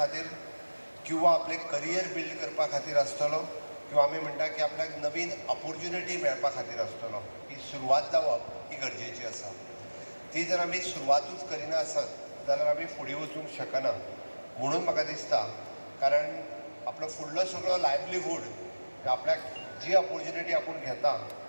किंवा आपले करियर बिल्ड करपा खातीर आसतलो किंवा आमी म्हणटा की आपल्याक नवीन ऑपॉर्च्युनिटी मेळपा खातीर आसतलो. ही सुरवात जावप ही गरजेची आसा. ती जर आमी सुरवातूच करिना आसत जाल्यार आमी फुडें वचूंक शकना म्हणून म्हाका दिसता. कारण आपलो फुडलो सगळो लायव्हलीहूड आपल्याक जी ऑपॉर्च्युनिटी आपूण घेता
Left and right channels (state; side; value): inverted; both; correlation -1.00